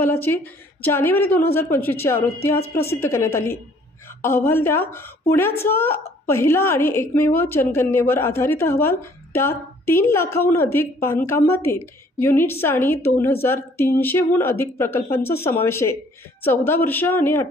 जानेवारी 2025ची आवृत्ती आज प्रसिद्ध करण्यात आली. अहवाल त्या पुण्याचा पहिला आणि एकमेव जनगणनेवर आधारित अहवाल. त्यात 3 लाखाहून अधिक बांधकामातील युनिट्स आणि 2300हून अधिक प्रकल्पांचा समावेश आहे. 14 वर्ष आणि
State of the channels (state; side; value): normal; both; correlation 0.59